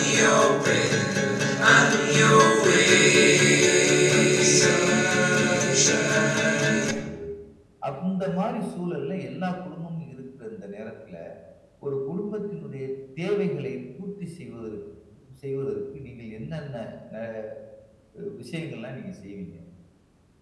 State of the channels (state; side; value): identical; both; correlation 1.00